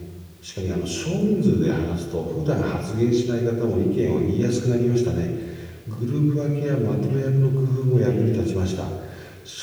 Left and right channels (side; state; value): both; identical; correlation 1.00